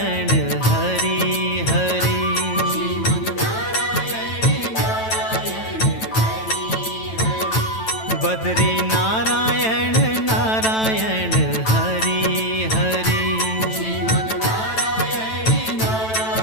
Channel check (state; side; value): late; right; 9.1 ms